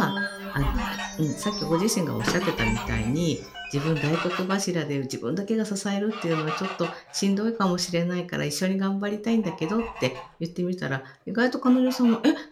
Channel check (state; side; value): identical; both; correlation 1.00